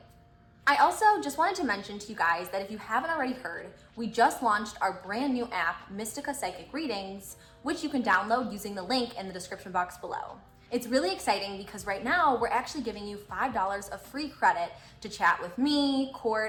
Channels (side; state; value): both; identical; correlation 1.00